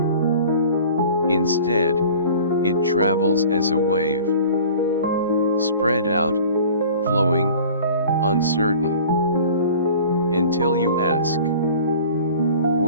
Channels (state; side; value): inverted; both; correlation -0.45